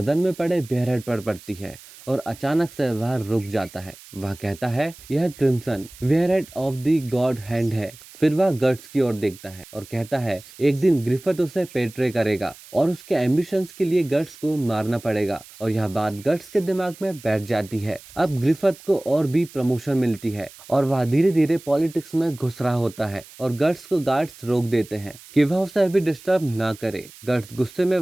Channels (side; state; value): right; noise; hiss, 20 dB below the sound